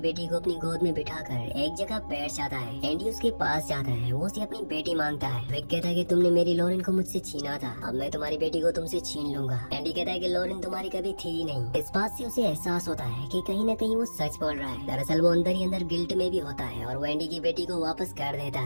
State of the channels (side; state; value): both; inverted; correlation -1.00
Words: बेटी को अपनी गोद में बिठाकर एक जगह बैठ जाता है। एंडी उसके पास जाता है, वो उसे अपनी बेटी मांगता है। विक कहता है कि तुमने मेरी लॉरेन को मुझसे छीना था, अब मैं तुम्हारी बेटी को तुमसे छीन लूंगा। एंडी कहता है कि लॉरेन तुम्हारी कभी थी ही नहीं। इस बात से उसे एहसास होता है कि कहीं न कहीं वो सच बोल रहा है। दरअसल वो अंदर ही अंदर गिल्ट में भी होता है और वो एंडी की बेटी को वापस कर देता